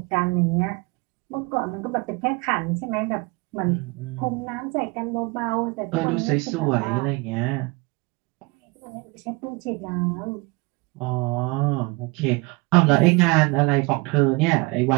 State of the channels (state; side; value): quieter; left; 25.6 dB